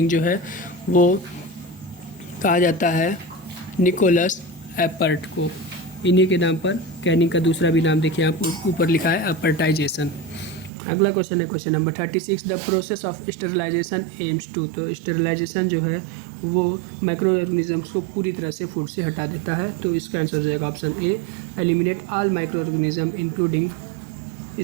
जो है वो कहा जाता है निकोलस एपर्ट को। इन्हीं के नाम पर कैनिंग का दूसरा भी नाम देखिए आप ऊपर लिखा है एपर्टाइजेशन। अगला क्वेश्चन है question number 36, the process of sterilisation aims to. तो स्टेरिलाइजेशन जो है वो माइक्रो ऑर्गेनिजम्स को पूरी तरह से फूड से हटा देता है। तो इसका आंसर हो जाएगा option A, eliminate all micro organism including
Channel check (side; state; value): left; drops out; at 10.7 s